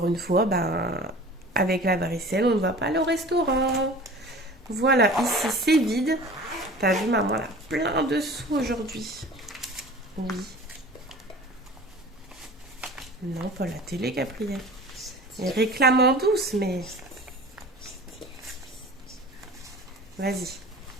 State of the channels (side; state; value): both; normal; correlation 0.41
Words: une fois, ben, avec la varicelle, on ne va pas aller au restaurant. Voilà, ici c'est vide. T'as vu, maman, elle a plein de sous aujourd'hui. Oui. Non, pas la télé, Gabriel. Elle réclame en douce, mais... Vas-y,